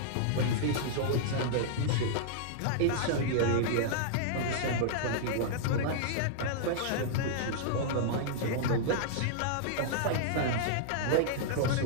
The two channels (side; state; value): both; different; correlation -0.01